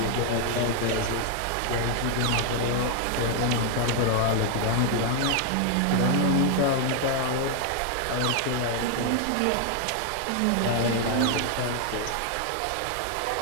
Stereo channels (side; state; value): both; different; correlation 0.00